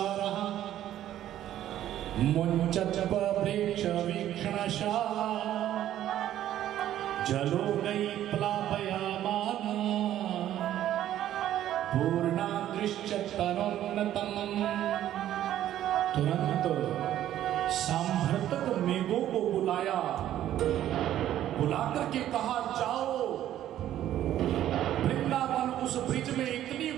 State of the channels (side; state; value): left; quieter; 12.2 dB